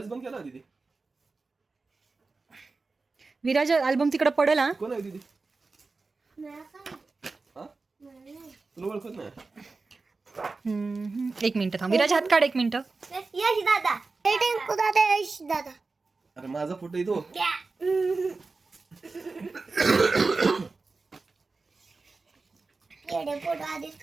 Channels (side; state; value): left; quieter; 3.9 dB